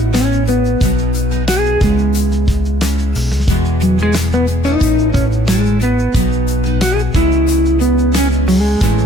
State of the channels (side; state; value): both; normal; correlation 0.64